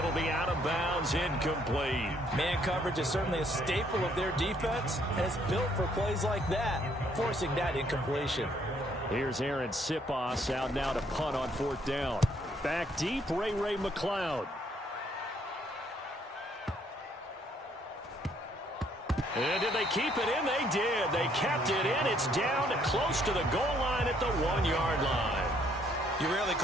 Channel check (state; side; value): normal; both; correlation 0.67